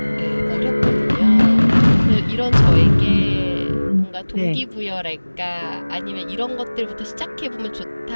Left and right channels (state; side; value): inverted; both; correlation -1.00